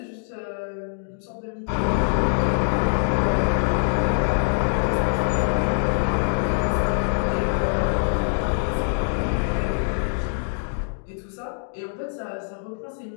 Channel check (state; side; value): silent; right; digital silence